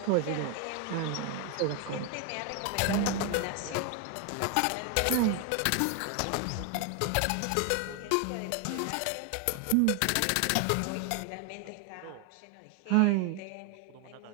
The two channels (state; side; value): different; both; correlation 0.01